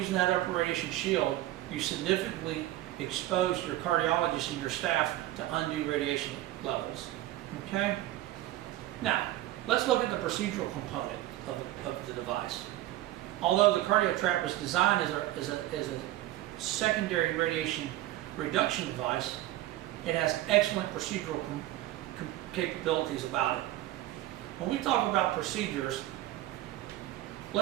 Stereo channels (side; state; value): left; quieter; 15.5 dB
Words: that upper radiation shield, you significantly expose your cardiologist and your staff to undue radiation levels. Okay? Now, let's look at the procedural component of the device. Although the CardioTrap was designed as a secondary radiation reduction device, it has excellent procedural capabilities about it. When we talk about procedures,